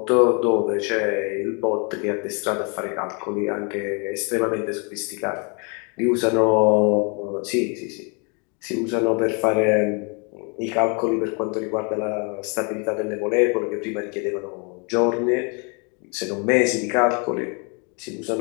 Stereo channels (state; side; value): quieter; right; 34.7 dB